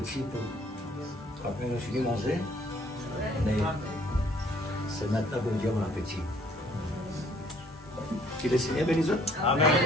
pour. Après, on finit de manger. Mais c'est maintenant que Dieu a mon appétit. Que le Seigneur bénisse. Amen.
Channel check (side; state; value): both; normal; correlation 0.61